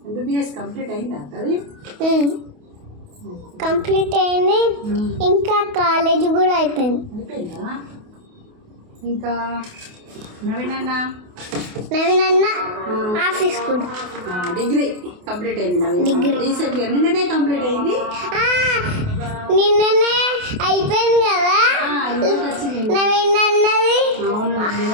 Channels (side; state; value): left; late; 28 ms